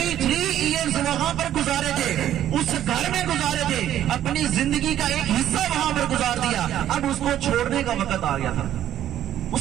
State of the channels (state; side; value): quieter; left; 11.6 dB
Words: ایئرز وہاں پر گزارے تھے، اس گھر میں گزارے تھے، اپنی زندگی کا ایک حصہ وہاں پر گزار دیا، اب اس کو چھوڑنے کا وقت آ گیا تھا، اس